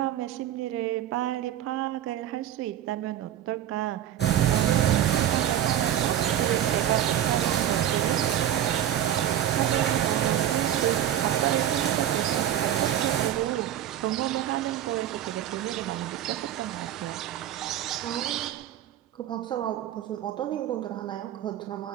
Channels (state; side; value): quieter; left; 11.3 dB